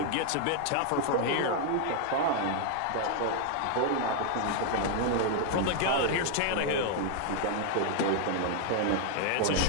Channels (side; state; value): both; different; correlation 0.00